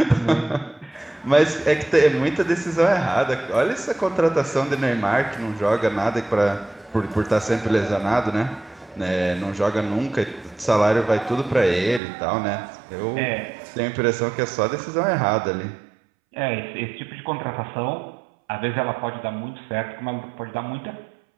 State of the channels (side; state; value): left; drops out; at 12.0 s